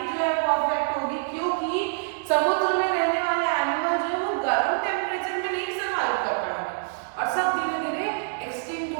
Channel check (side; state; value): left; silent; 61 dB below the other